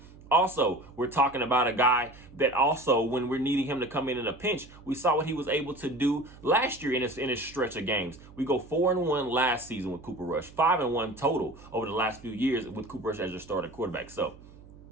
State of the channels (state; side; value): noise; right; hum, 21 dB below the sound